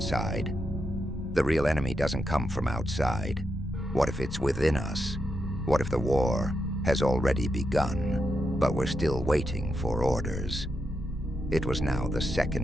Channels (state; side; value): normal; both; correlation 0.84